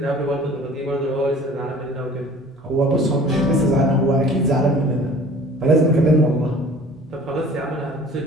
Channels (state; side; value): normal; both; correlation 0.47